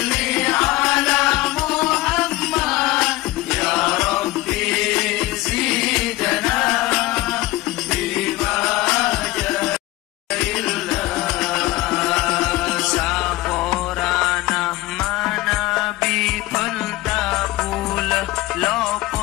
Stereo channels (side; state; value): right; quieter; 18.9 dB